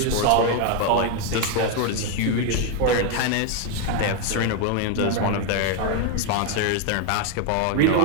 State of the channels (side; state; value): both; different; correlation 0.01